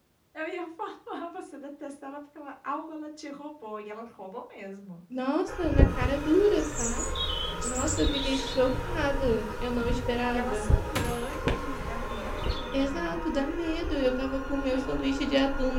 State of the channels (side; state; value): both; identical; correlation 1.00